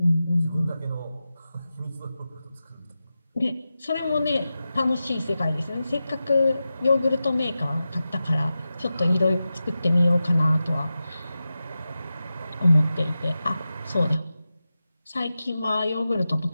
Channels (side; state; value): both; inverted; correlation -0.93